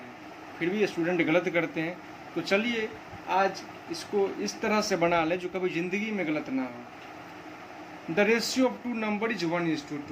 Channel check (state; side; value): identical; both; correlation 1.00